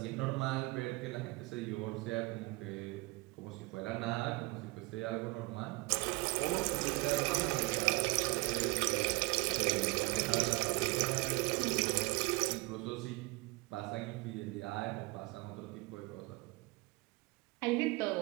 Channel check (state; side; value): quieter; left; 24.3 dB